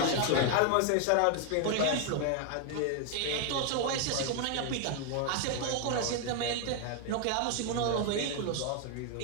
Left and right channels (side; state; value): both; different; correlation 0.00